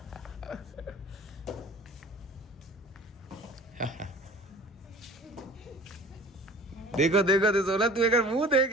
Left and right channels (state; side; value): normal; both; correlation 0.44